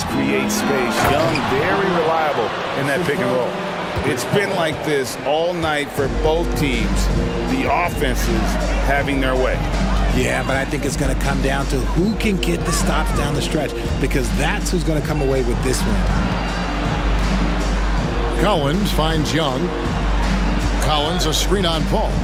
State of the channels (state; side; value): identical; both; correlation 1.00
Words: create space. Young, very reliable in that pick and roll. It's been like this all night for both teams. The offenses having their way. Yeah, but I think it's going to come down to who can get the stops down the stretch, because that's who's going to come away with this win. Collins finds Young. Collins a screen on Paul.